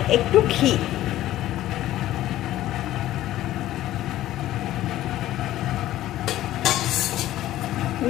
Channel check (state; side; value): quieter; right; 14.2 dB